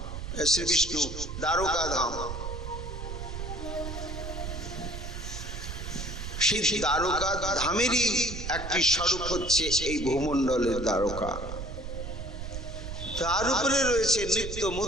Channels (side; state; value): right; noise; rumble, 7 dB below the sound